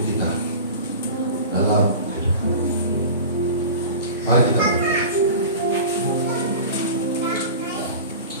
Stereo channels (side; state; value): both; inverted; correlation -0.35